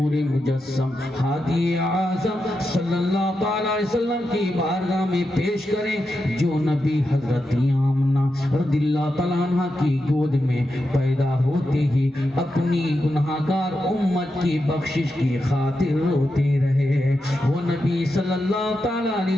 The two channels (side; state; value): both; normal; correlation 0.88